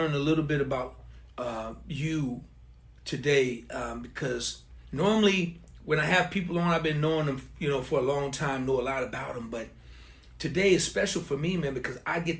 a little bit about you today. Because normally when I have people on, I've been knowing them, for a long time, know a lot about them. But today is special for me, man, because I get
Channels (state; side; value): identical; both; correlation 1.00